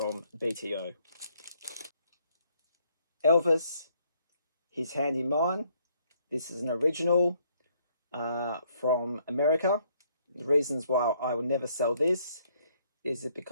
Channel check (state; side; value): inverted; both; correlation -0.68